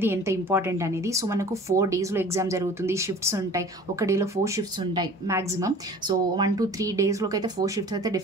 ఎంత ఇంపార్టెంట్ అనేది. సో మనకు 4 daysలో ఎగ్జామ్ జరుగుతుంది, షిఫ్ట్స్ ఉంటాయి, ఒక డేలో 4 shifts ఉంటాయి మ్యాక్సిమం. సో 1 to 3 daysలోకి అయితే 4 shifts అయితే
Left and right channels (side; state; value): both; normal; correlation 0.44